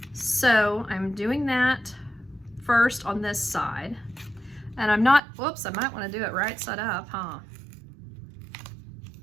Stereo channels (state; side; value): drops out; left; at 5.2 s